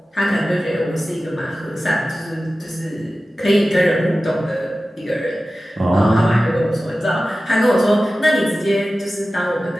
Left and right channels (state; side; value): normal; both; correlation 0.95